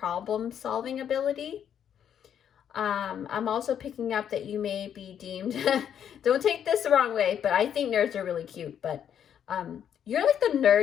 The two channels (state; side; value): quieter; right; 9.0 dB